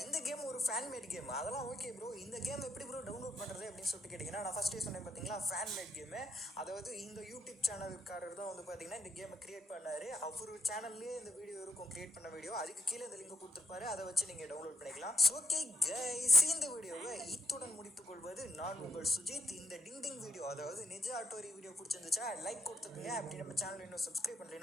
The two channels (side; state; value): both; normal; correlation 0.76